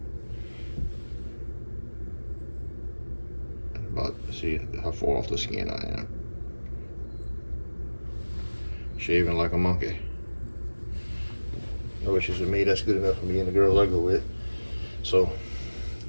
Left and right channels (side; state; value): both; inverted; correlation -1.00